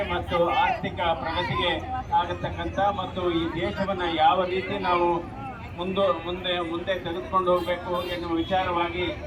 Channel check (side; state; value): both; identical; correlation 1.00